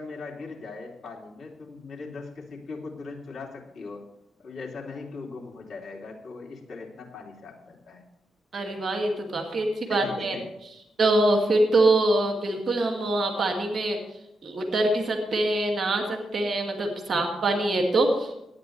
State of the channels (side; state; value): both; normal; correlation 0.84